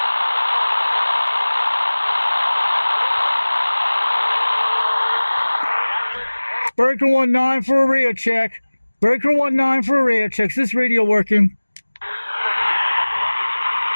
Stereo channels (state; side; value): inverted; both; correlation -1.00